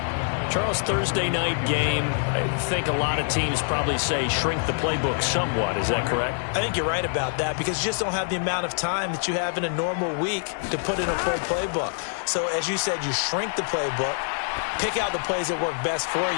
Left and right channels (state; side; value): silent; right; digital silence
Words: Charles, Thursday night game, I think a lot of teams probably say shrink the playbook somewhat. Is that correct? I think you're right about that because you just don't have the amount of time that you have in a normal week to put in a full playbook. So, as you said, you shrink the playbook, pick out the plays that work best for